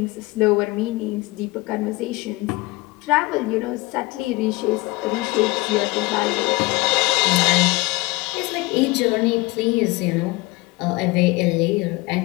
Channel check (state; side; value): quieter; right; 23.1 dB